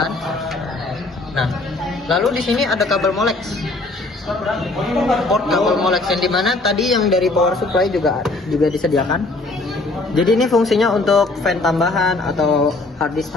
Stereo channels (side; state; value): right; quieter; 3.2 dB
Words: Nah, lalu di sini ada kabel Molex. Port kabel Molex yang dimana tadi yang dari power supply juga disediakan. Jadi ini fungsinya untuk fan tambahan atau hard disk